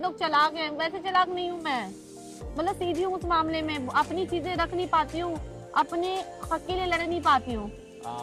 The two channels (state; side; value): identical; both; correlation 1.00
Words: लोग चालाक हैं, वैसे चालाक नहीं हूँ मैं। मतलब सीधी हूँ उस मामले में, अपनी चीजें रख नहीं पाती हूँ, अपने हक के लिए लड़ नहीं पाती हूँ,